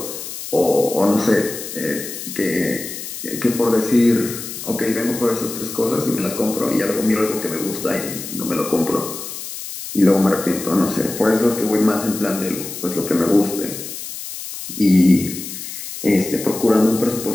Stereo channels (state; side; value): noise; left; hiss, 9 dB below the sound